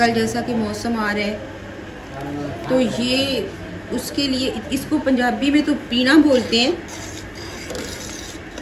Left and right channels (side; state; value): both; identical; correlation 1.00